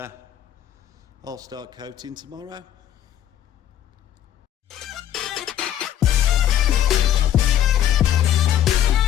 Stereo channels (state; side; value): quieter; right; 10.9 dB